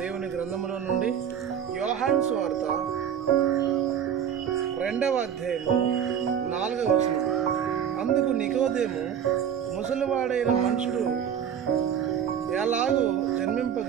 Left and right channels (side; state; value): left; quieter; 8.6 dB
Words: గ్రంథములో నుండి యోహాను సువార్త 2వ అధ్యాయము 4వ వచనం. అందుకు నికోదేము, ముసలివాడైన మనుషుడు ఎలాగూ